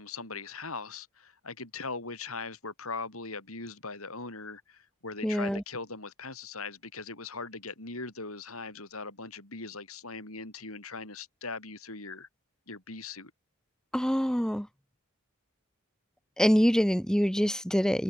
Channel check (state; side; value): normal; both; correlation 0.84